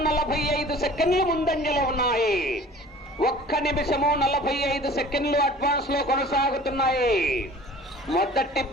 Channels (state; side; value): normal; both; correlation 0.45